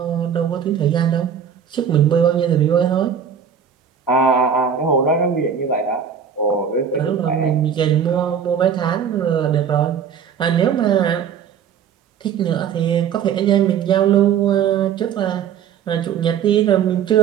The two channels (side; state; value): left; quieter; 7.7 dB